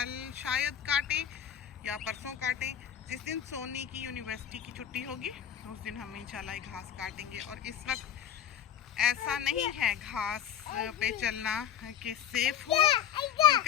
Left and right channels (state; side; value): quieter; right; 9.5 dB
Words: शायद काटें या परसों काटें। जिस दिन सोनी की यूनिवर्सिटी की छुट्टी होगी उस दिन हम इंशाल्लाह घास काटेंगे। और इस वक्त ऐसा नहीं है घास पे चलना कि सेफ हो,